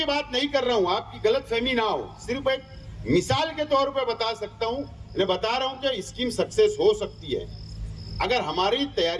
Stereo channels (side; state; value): both; identical; correlation 1.00